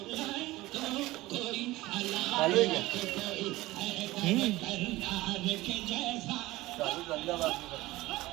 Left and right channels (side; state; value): left; quieter; 18.5 dB